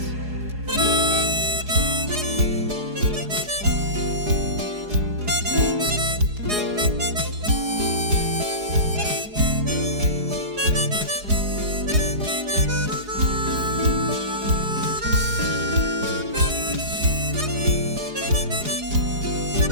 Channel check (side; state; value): left; late; 4.8 ms